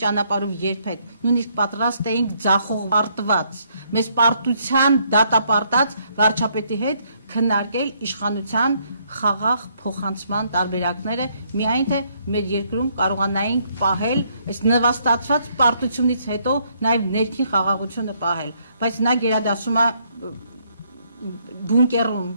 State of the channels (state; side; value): inverted; both; correlation -0.70